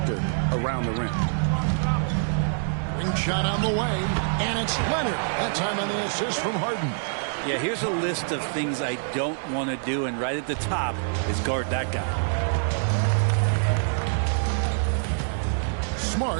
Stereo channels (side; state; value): left; silent; 61 dB below the other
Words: around the rim. Ring shot on the way, and it's Leonard. That time on the assist from Harden. Yeah, here's a list of things I don't want to do, and right at the top is guard that guy.